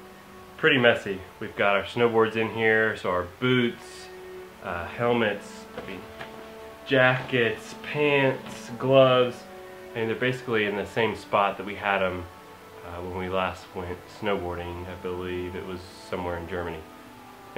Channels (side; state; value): both; identical; correlation 1.00